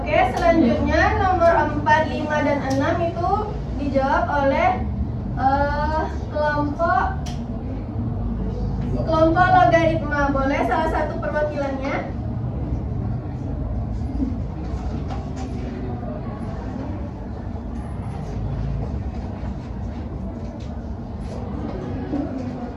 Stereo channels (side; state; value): both; identical; correlation 1.00